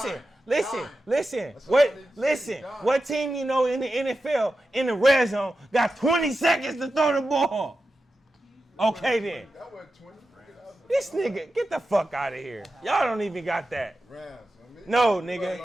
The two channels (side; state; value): both; normal; correlation 0.91